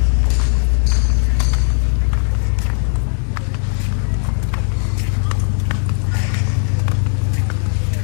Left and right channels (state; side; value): silent; right; 61 dB below the other